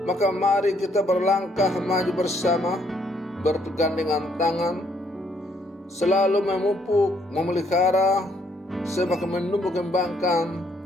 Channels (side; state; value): both; normal; correlation 0.69